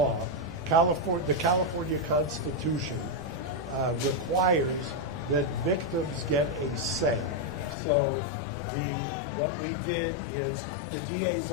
the California Constitution requires that victims get a say. So what we did is the DA's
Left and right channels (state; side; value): drops out; right; at 7.8 s